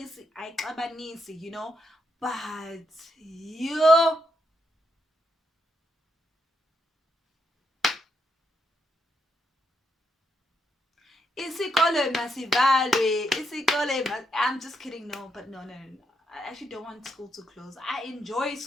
but you isikole masivalwe, I'm just kidding. No, but no, no, no, no. I actually don't want school to close. I enjoy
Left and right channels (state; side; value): normal; both; correlation 0.80